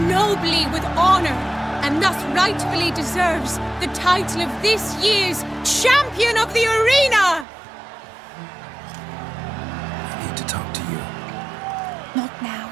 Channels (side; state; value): left; drops out; at 7.5 s